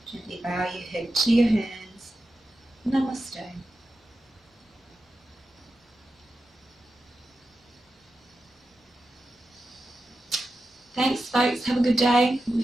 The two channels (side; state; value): both; normal; correlation 0.90